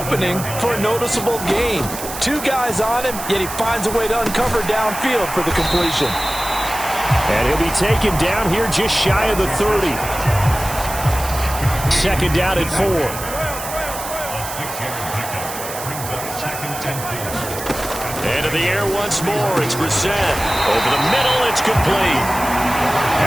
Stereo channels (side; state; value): right; noise; hiss, 9 dB below the sound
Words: for a noticeable gain. 2 guys on him, yet he finds a way to uncover downfield for the completion. And he'll be taken down here just shy of the 30. 2nd down at 4. And in the air once more, it's Brissett. Over the middle, it's complete.